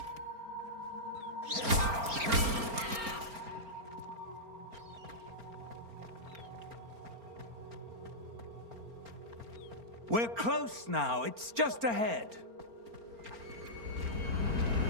We're close now. It's just ahead.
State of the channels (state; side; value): late; left; 4.4 ms